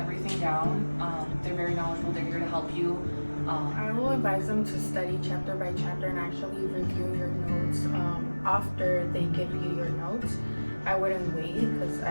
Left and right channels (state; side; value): inverted; both; correlation -1.00